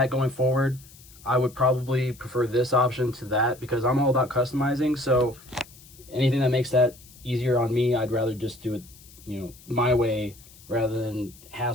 going forward, I would probably prefer this option to that, because I'm all about customizing. So anything that makes that easier on me, I'd rather just do it, my way, rather than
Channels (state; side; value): noise; left; hiss, 23 dB below the sound